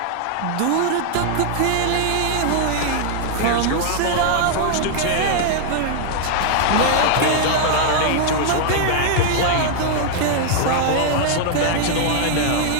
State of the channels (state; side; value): different; both; correlation 0.00